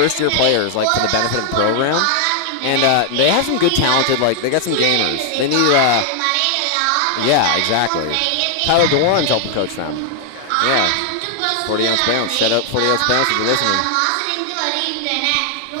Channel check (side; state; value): both; different; correlation 0.00